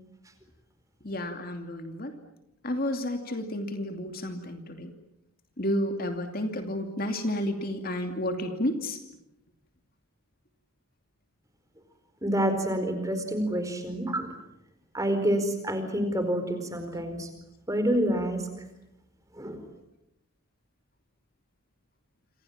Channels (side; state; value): both; normal; correlation 0.60